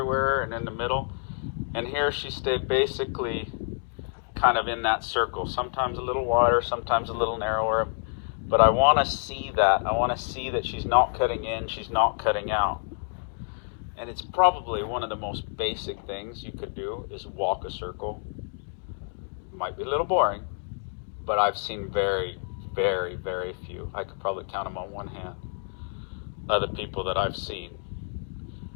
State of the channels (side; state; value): right; silent; 59 dB below the other